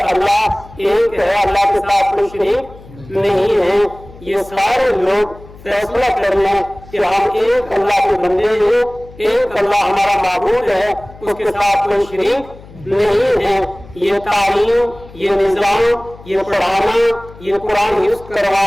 एक है, अल्लाह के साथ कोई शरीक नहीं है। ये सारे लोग फैसला कर लें कि हम एक अल्लाह के बंदे हैं, एक अल्लाह हमारा माबूद है, उसके साथ कोई शरीक नहीं है। ये तालीम, ये निजाम, ये पढ़ाना, ये कुरान हिफ्ज़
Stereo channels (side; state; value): left; noise; hum, 20 dB below the sound